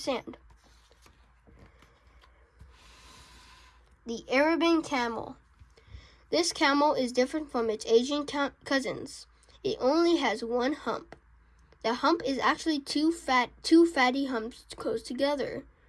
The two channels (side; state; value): both; identical; correlation 1.00